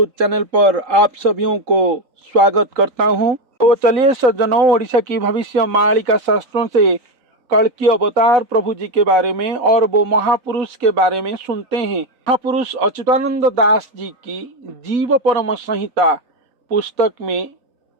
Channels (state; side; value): late; left; 3.9 ms